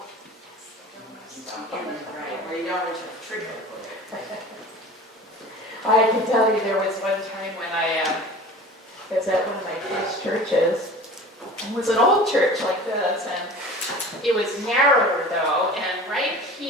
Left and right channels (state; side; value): normal; both; correlation 0.40